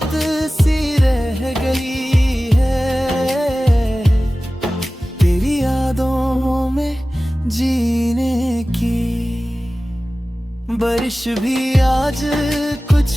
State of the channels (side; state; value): both; normal; correlation 0.97